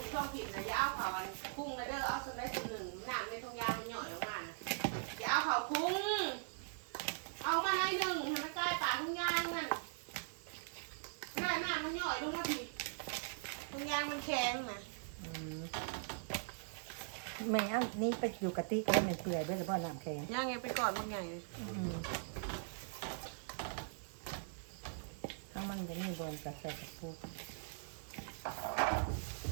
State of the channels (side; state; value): left; silent; 50 dB below the other